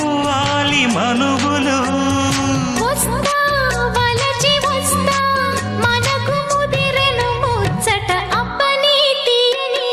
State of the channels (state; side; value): identical; both; correlation 1.00